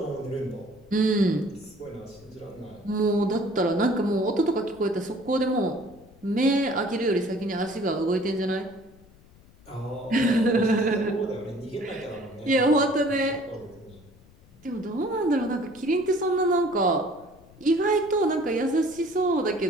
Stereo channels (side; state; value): left; noise; rumble, 26 dB below the sound